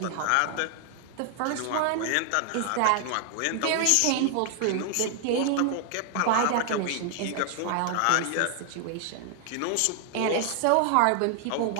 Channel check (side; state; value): both; different; correlation 0.00